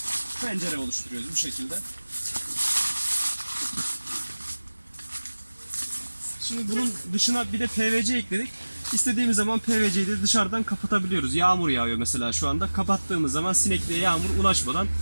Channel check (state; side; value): inverted; both; correlation -1.00